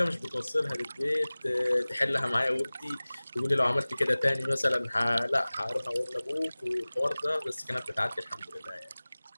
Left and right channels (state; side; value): inverted; both; correlation -0.99